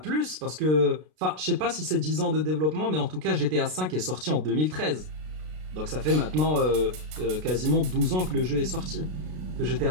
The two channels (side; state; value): left; late; 33 ms